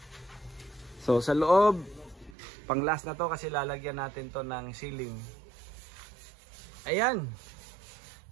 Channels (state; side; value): drops out; left; at 2.4 s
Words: So sa loob, pang last na to kasi lalagyan natin to ng ceiling. Ayan.